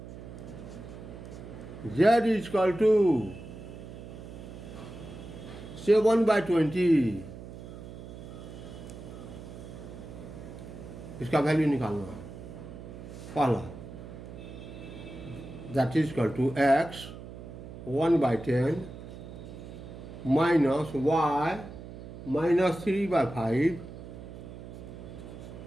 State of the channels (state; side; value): noise; right; hum, 13 dB below the sound